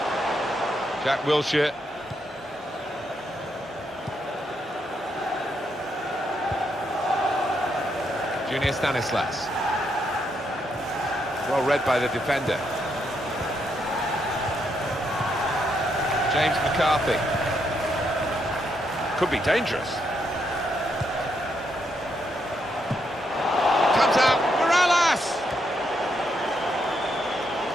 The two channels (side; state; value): both; normal; correlation 0.78